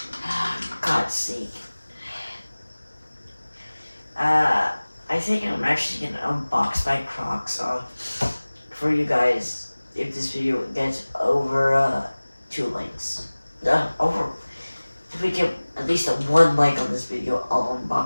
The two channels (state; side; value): inverted; both; correlation -1.00